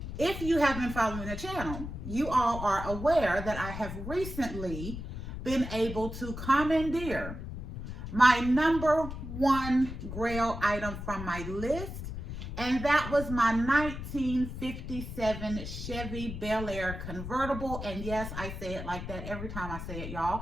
If you have been following the channel, you all are aware that I have recently been able to commandeer my number one Grail item from my list. And that was my 1957 Chevy Bel Air convertible. And yes, I say it like that every time I say it,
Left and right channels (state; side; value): noise; left; rumble, 8 dB below the sound